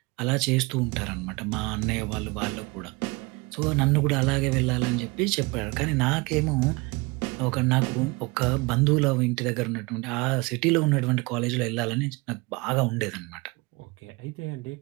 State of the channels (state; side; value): quieter; left; 25.8 dB